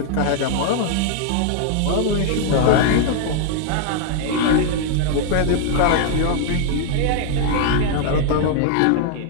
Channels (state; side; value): different; both; correlation -0.01